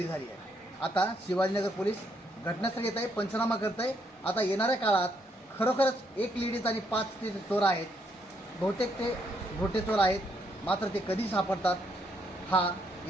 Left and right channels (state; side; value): normal; both; correlation 0.73